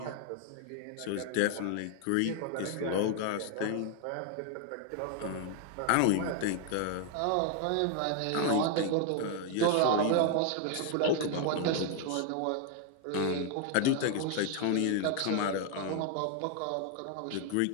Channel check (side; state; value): both; different; correlation 0.00